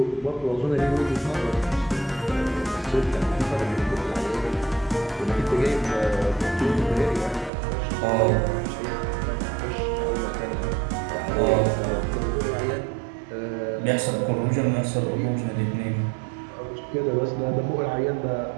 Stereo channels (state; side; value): drops out; left; at 7.5 s